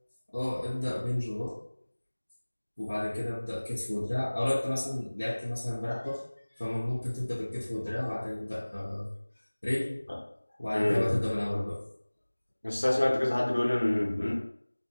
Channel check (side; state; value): both; inverted; correlation -1.00